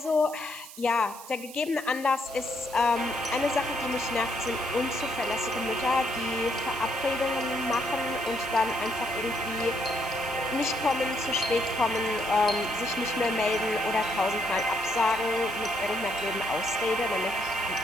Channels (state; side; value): noise; right; hiss, 16 dB below the sound